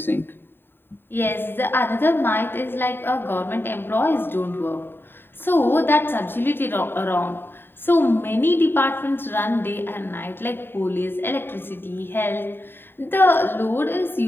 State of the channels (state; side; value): late; right; 0.10 ms